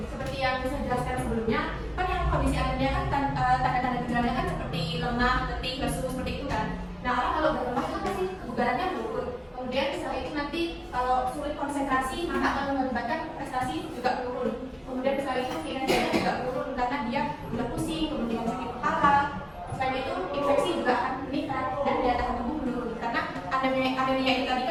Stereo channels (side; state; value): both; identical; correlation 1.00